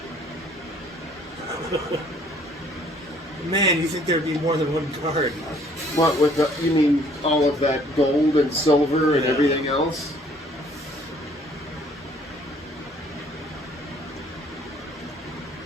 Man, you think there'd be more than one card? What, with the, you mean all of that gold and silver and everything else?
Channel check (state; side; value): normal; both; correlation 0.59